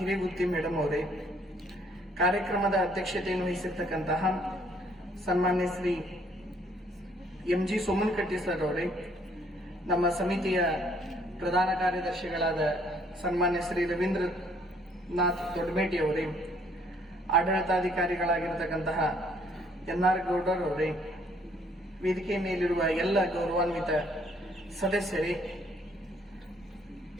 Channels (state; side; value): normal; both; correlation 0.64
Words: ಮೇಡಮ್ ಅವರೇ, ಕಾರ್ಯಕ್ರಮದ ಅಧ್ಯಕ್ಷತೆಯನ್ನು ವಹಿಸಿರ್ತಕ್ಕಂತಹ ಸನ್ಮಾನ್ಯ ಶ್ರೀ MG ಸೋಮನಕಟ್ಟಿ ಸರ್ ಅವರೇ, ನಮ್ಮ ಸಮಿತಿಯ ಪ್ರಧಾನ ಕಾರ್ಯದರ್ಶಿಗಳಾದ ಸನ್ಮಾನ್ಯ ಶ್ರೀ ರವೀಂದ್ರನಾಥ್ ದೊಡ್ಡಮೇಟಿ ಅವರೇ, ಆಡಳಿತಾಧಿಕಾರಿಗಳಾಗಿರತಕ್ಕಂತಹ NR ಗೌಡರ್ ಅವರೇ, ವೇದಿಕೆ ಮೇಲಿರುವ ಎಲ್ಲ ಗೌರವಾನ್ವಿತ ಸದಸ್ಯರೇ,